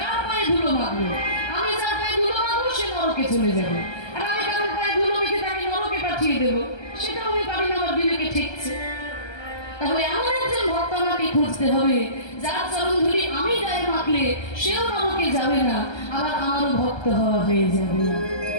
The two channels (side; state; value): right; late; 1.3 ms